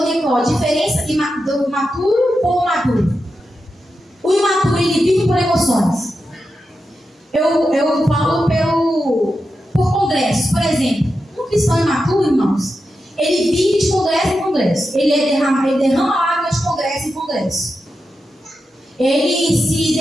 qual? A diferença do maturo ou maduro. O imaturo, ele vive por emoções. Eu falo por congressos. Por exemplo, um cristão imaturo, irmãos, ele vive de congresso em congresso. Ele derrama água de congresso em congresso. Ele se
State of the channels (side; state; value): both; normal; correlation 0.89